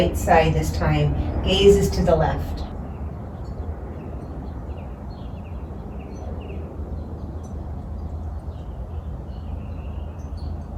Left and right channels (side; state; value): both; identical; correlation 1.00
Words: side this time. Gaze is to the left.